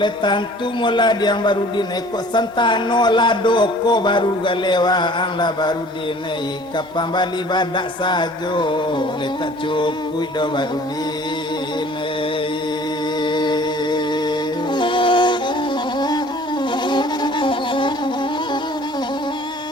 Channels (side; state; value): both; normal; correlation 0.50